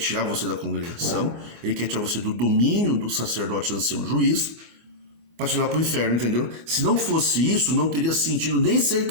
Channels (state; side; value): late; left; 24 ms